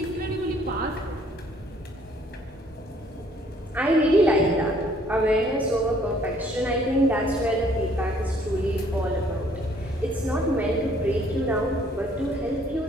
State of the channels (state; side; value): normal; both; correlation 0.62